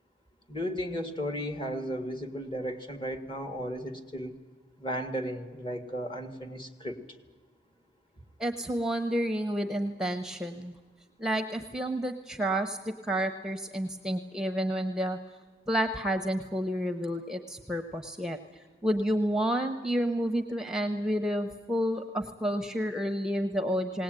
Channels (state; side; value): normal; both; correlation 0.77